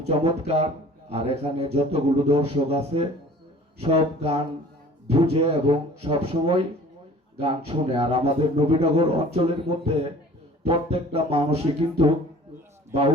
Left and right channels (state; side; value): normal; both; correlation 0.47